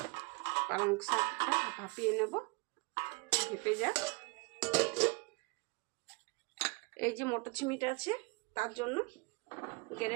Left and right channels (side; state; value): left; quieter; 29.0 dB